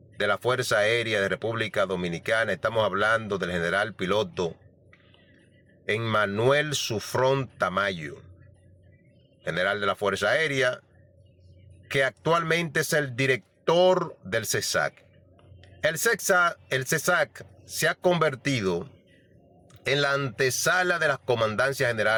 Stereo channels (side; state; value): both; identical; correlation 1.00